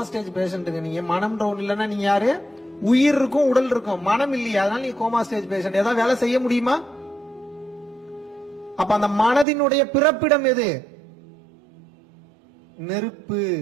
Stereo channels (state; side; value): drops out; left; at 9.5 s